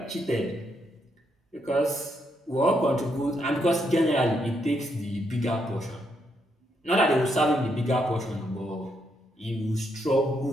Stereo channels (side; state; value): both; normal; correlation 0.77